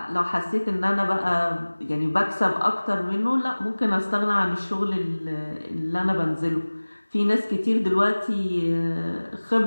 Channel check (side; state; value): both; inverted; correlation -1.00